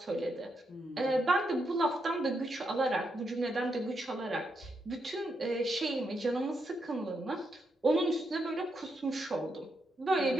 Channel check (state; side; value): normal; both; correlation 0.81